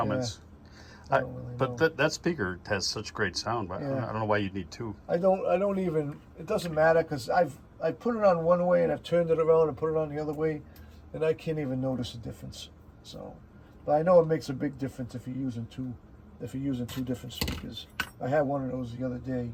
I don't really know. But that speaker has such great sound. But I don't know why you'd need 2. I don't even. It doesn't matter because I put it on one way and I've turned it around and put it on the other way, and I can't even notice the difference. So, but I know it makes a big difference if you're using 2 different speakers. I had one of those the other day,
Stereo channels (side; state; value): both; identical; correlation 1.00